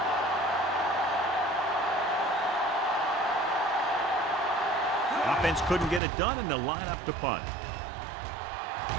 Offense couldn't get it done, and they'll line up to punt.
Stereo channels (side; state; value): left; drops out; at 6.0 s